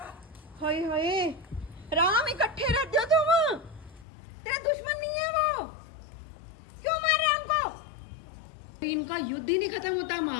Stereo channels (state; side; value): drops out; right; at 4.0 s